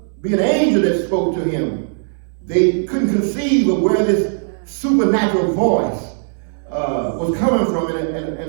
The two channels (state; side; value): silent; left; 67 dB below the other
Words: be an angel that spoke to him. They couldn't conceive of where this supernatural voice was coming from